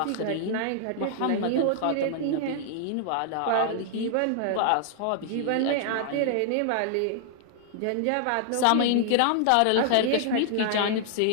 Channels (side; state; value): both; different; correlation -0.01